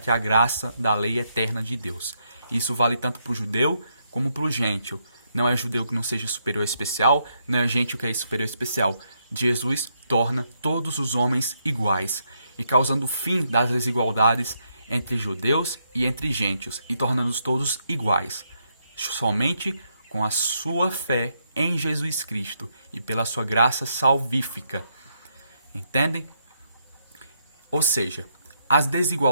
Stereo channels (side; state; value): both; inverted; correlation -0.78